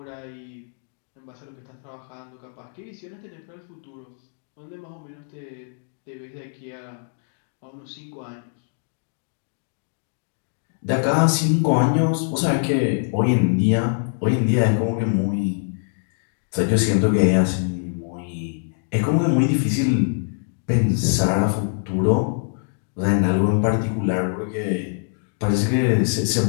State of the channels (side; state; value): right; silent; digital silence